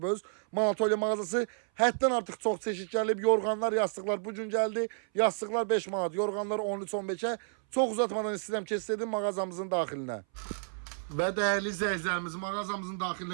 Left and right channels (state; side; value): silent; left; 57 dB below the other